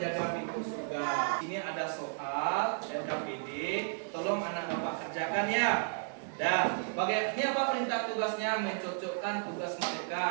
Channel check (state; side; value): silent; left; digital silence